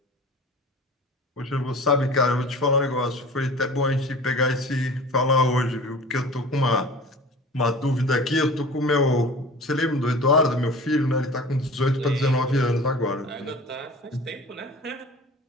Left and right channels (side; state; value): both; normal; correlation 0.40